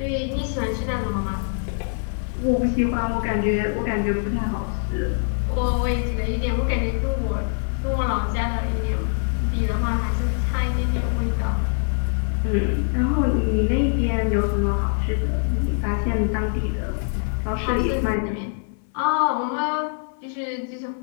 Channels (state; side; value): silent; right; 59 dB below the other